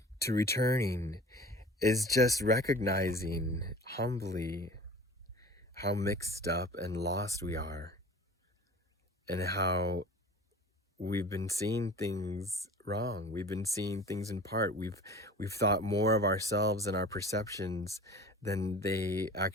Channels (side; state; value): both; normal; correlation 0.41